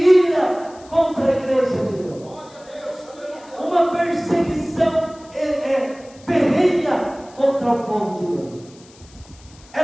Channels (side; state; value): left; noise; hiss, 25 dB below the sound